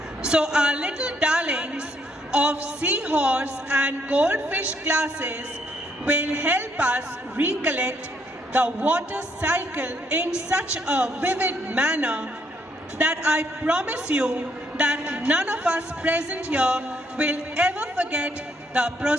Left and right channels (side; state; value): both; normal; correlation 0.72